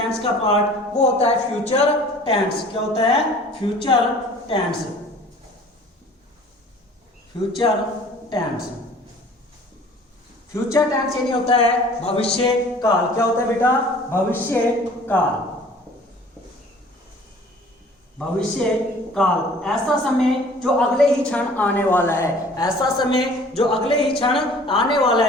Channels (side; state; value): both; normal; correlation 0.49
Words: का पार्ट, वो होता है फ्यूचर टेंस। क्या होता है? Future tense. Future tense. Future tense यानी होता है भविष्य काल। क्या होता है बेटा? भविष्य काल। भविष्य काल ऐसा समय जो अगले ही क्षण आने वाला है। ऐसा समय जो अगले ही क्षण आने वाला